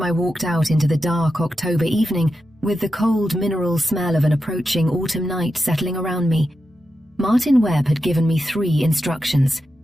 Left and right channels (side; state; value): both; normal; correlation 0.89